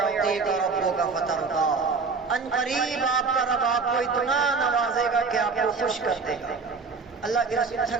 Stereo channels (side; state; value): left; quieter; 4.7 dB